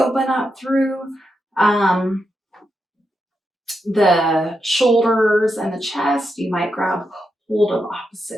up through the shoulders and the chest. You might grab hold of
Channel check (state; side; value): normal; both; correlation 0.85